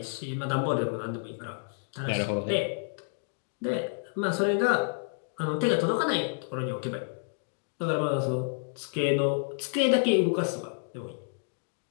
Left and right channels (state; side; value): silent; right; digital silence